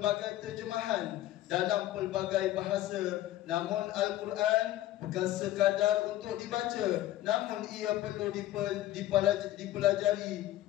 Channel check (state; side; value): quieter; right; 14.3 dB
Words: terjemahan dalam pelbagai bahasa. Namun Al-Quran bukan sekadar untuk dibaca, namun ia perlu dipelajari